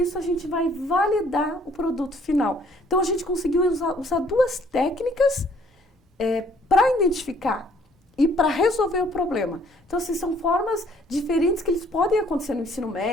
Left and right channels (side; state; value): both; normal; correlation 0.61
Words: a gente vai validar o produto final. Então, a gente conseguiu usar 2 técnicas para identificar e para resolver o problema. Então, assim, são formas diferentes que eles podem acontecer no ensino